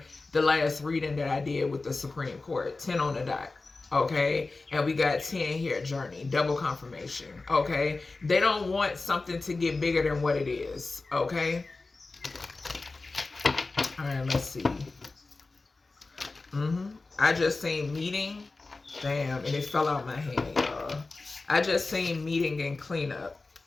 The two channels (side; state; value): right; quieter; 3.6 dB